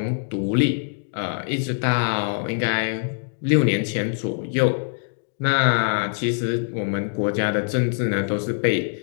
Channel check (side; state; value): right; silent; digital silence